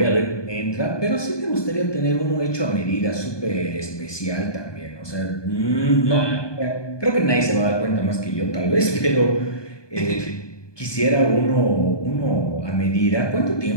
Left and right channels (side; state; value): right; late; 1.2 ms